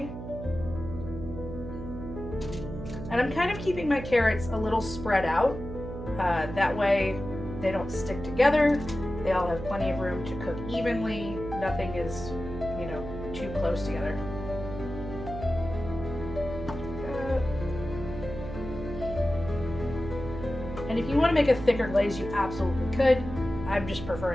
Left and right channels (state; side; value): noise; right; hum, 9 dB below the sound